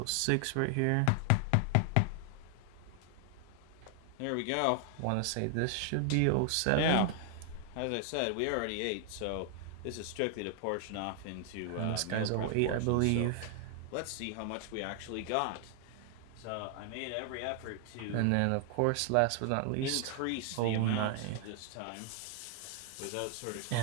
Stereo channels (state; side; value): different; both; correlation 0.00